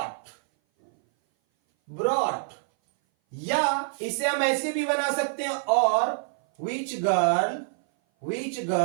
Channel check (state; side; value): silent; left; 58 dB below the other